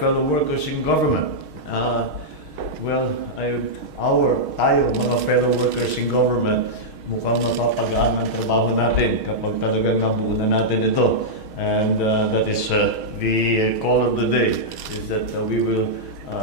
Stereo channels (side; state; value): left; late; 6.4 ms